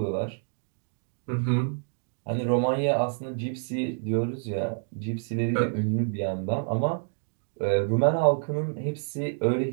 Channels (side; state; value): left; silent; digital silence